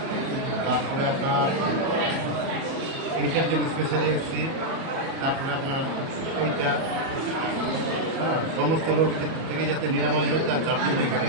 তারপরে আপনার এইটার জন্য স্পেশালি এসেছি। তারপরে আপনার এইটা সমস্ত রোগ থেকে যাতে নিরাময় হয়ে তার জন্য এখানে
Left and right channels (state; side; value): late; left; 37 ms